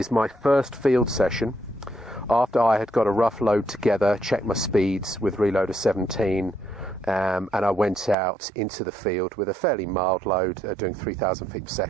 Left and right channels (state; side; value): drops out; left; at 8.2 s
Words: my first field session. After I had got a rough load together, checked my speeds with Reloader 17, and I went out into the field with a fairly mild load, doing 3,000 feet per